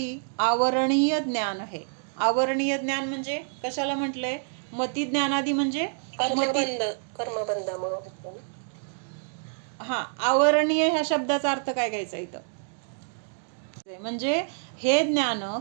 आवरणीय ज्ञान है. आवरणीय ज्ञान म्हणजे कशाला म्हटलंय? मति ज्ञानादि म्हणजे कर्मबंधामुळे. हा, आवरणीय ह्या शब्दाचा अर्थ काय घ्यायचा इथं? म्हणजे हे ज्ञान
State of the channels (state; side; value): silent; left; digital silence